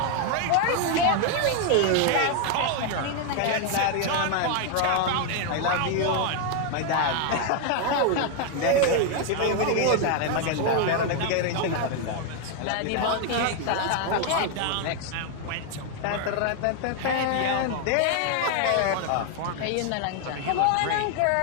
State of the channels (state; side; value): different; both; correlation 0.01